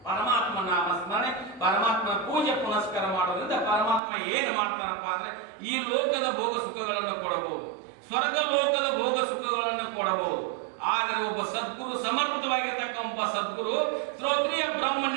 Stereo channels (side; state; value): left; drops out; at 4.0 s